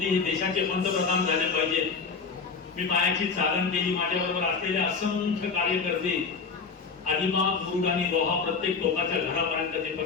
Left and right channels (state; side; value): quieter; right; 5.1 dB